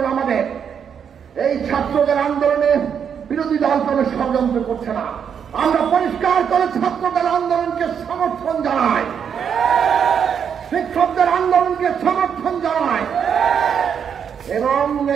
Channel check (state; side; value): quieter; left; 7.6 dB